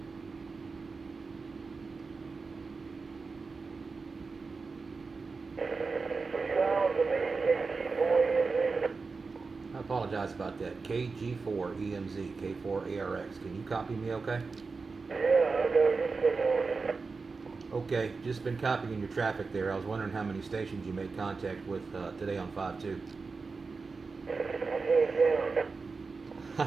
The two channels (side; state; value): left; quieter; 4.4 dB